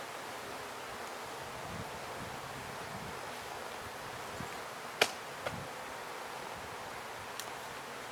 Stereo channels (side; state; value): both; identical; correlation 1.00